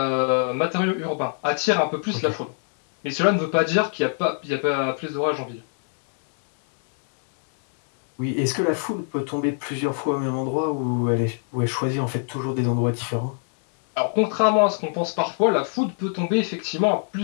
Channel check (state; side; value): silent; right; 59 dB below the other